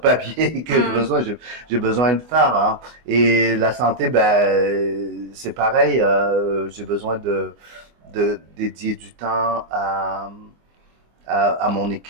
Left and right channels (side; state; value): left; late; 24 ms